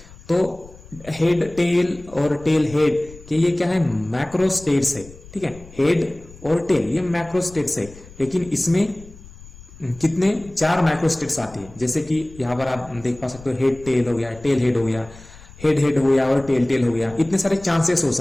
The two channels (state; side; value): noise; left; rumble, 20 dB below the sound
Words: तो हेड टेल और टेल हेड कि ये क्या है, मैक्रो स्टेट्स है। ठीक है, हेड और टेल ये मैक्रो स्टेट्स है, लेकिन इसमें कितने 4 माइक्रो स्टेट्स आती है। जैसे कि यहाँ पर आप देख पा सकते हो हेड टेल हो गया, टेल हेड हो गया, हेड हेड हो गया और टेल टेल हो गया। इतने सारे चांसेस हो